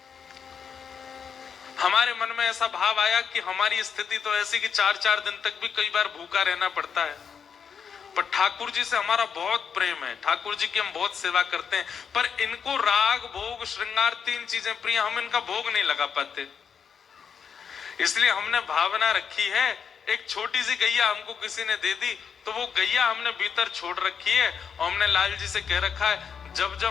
हमारे मन में ऐसा भाव आया कि हमारी स्थिति तो ऐसी कि 4-4 दिन तक भी कई बार भूखा रहना पड़ता है, पर ठाकुर जी से हमारा बहुत प्रेम है, ठाकुर जी की हम बहुत सेवा करते हैं, पर इनको राग भोग श्रृंगार 3 चीजें प्रिय, हम इनका भोग नहीं लगा पाते। इसलिए हमने भावना रखी है, एक छोटी सी गैया हमको किसी ने दे दी तो वो गैया हमने भीतर छोड़ रखी है और हमने लाल जी से कह रखा है जब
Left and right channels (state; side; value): quieter; right; 6.9 dB